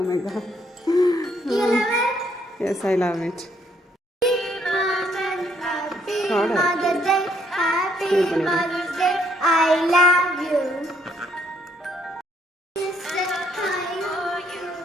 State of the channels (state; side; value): normal; both; correlation 0.69